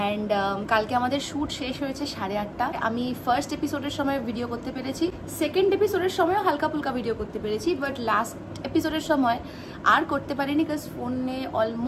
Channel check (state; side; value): identical; both; correlation 1.00